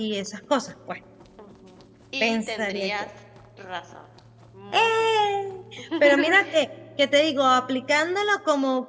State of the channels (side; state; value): both; identical; correlation 1.00